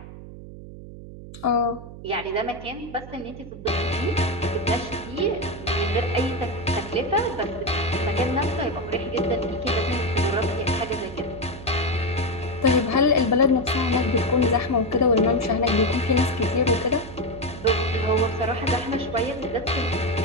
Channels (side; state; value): right; noise; hum, 14 dB below the sound